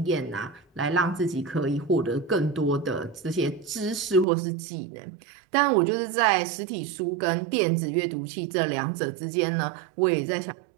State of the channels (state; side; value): drops out; left; at 4.2 s